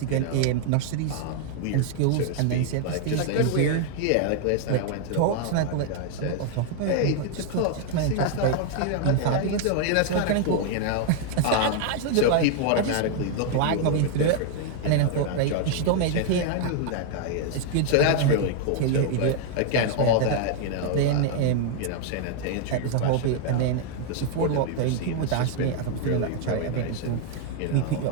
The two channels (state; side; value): different; both; correlation 0.00